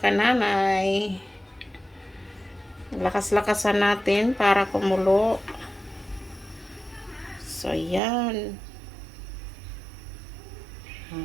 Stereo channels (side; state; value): left; drops out; at 8.0 s